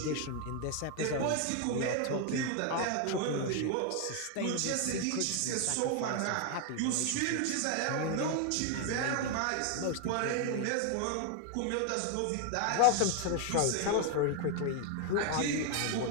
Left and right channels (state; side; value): different; both; correlation 0.01